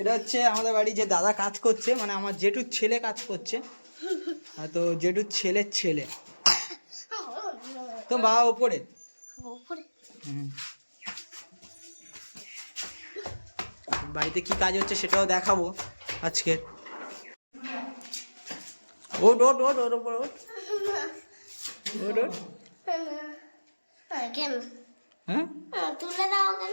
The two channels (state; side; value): inverted; both; correlation -1.00